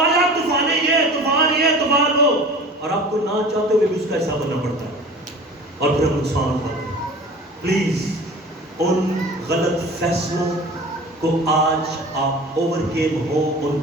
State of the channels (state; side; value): normal; both; correlation 0.40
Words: طوفان یہ, طوفان یہ, طوفان وہ, اور آپ کو نہ چاہتے ہوئے بھی اس کا حصہ بننا پڑتا ہے اور پھر ہم نقصان اٹھاتے ہیں. پلیز ان غلط فیصلوں کو آج آپ اوور کیم ہو ان